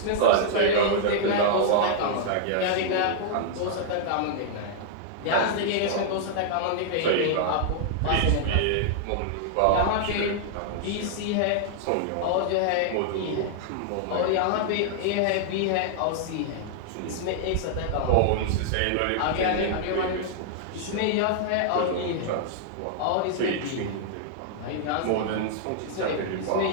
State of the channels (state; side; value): different; both; correlation -0.01